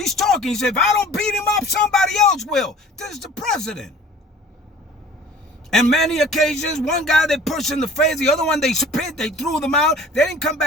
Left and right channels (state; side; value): normal; both; correlation 0.47